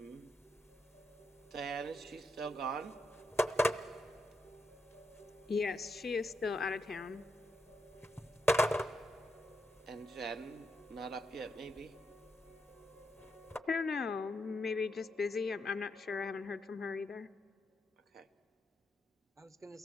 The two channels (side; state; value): both; normal; correlation 0.82